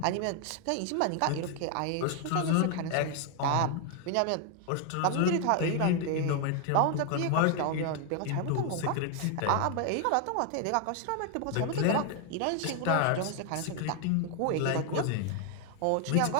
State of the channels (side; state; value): both; different; correlation 0.00